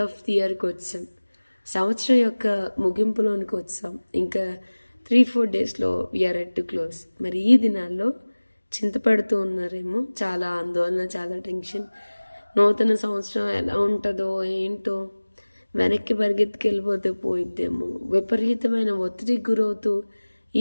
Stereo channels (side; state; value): both; inverted; correlation -1.00